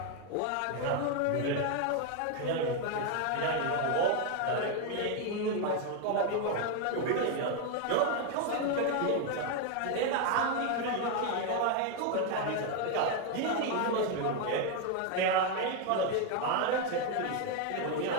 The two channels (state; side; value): different; both; correlation 0.01